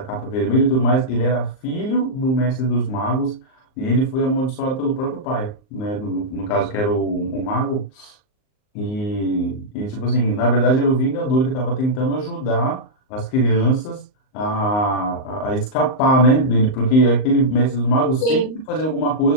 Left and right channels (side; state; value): right; late; 38 ms